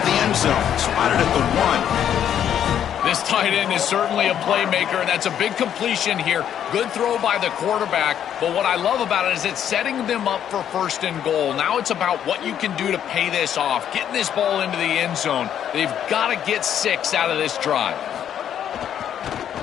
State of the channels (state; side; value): quieter; right; 9.7 dB